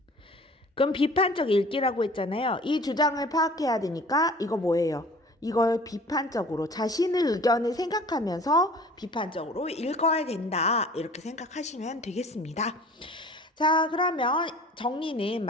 그럼 비판적 읽기라고 했잖아요. 이 주장을 파악해야 되니까 이거 뭐예요? 이걸 비판적으로 자신의 의견을 생각하면서 비판적으로 읽어야 된다. 이렇게 생각하시면 되겠습니다. 자, 그러면 정리는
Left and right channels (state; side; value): normal; both; correlation 0.47